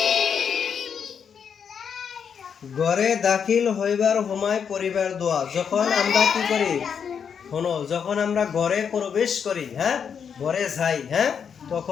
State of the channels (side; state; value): right; quieter; 7.1 dB